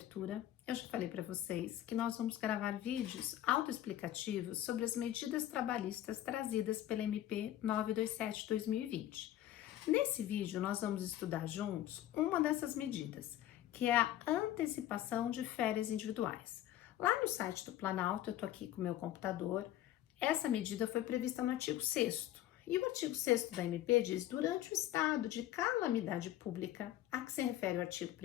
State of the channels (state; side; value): quieter; right; 13.1 dB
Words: eu já falei para vocês que nós vamos gravar vídeos autoexplicativos sobre as medidas trabalhistas trazidas pela MP 927/2020. Nesse vídeo nós vamos estudar juntos uma dessas medidas, que é a antecipação de férias individuais. Lá no site do Planalto, eu estou aqui com o meu computador, essa medida foi prevista no artigo 6º. E o artigo 6º da MP diz: durante o estado de calamidade pública, a que se refere o artigo